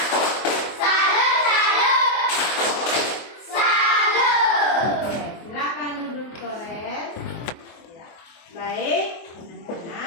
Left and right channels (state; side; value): late; right; 24 ms